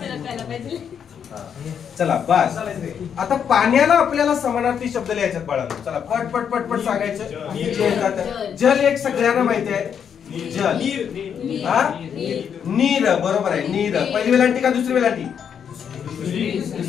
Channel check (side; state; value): right; quieter; 7.8 dB